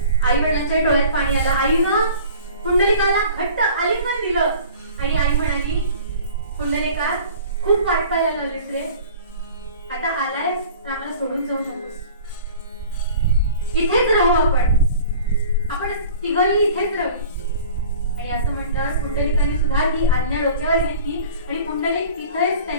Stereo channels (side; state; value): both; inverted; correlation -0.45